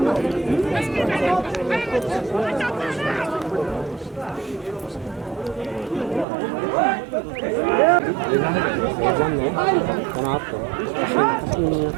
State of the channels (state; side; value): drops out; left; at 6.2 s